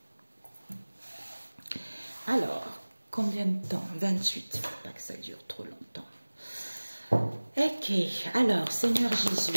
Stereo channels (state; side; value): inverted; both; correlation -1.00